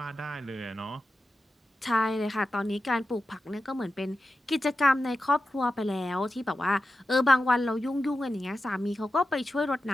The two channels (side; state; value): both; normal; correlation 0.91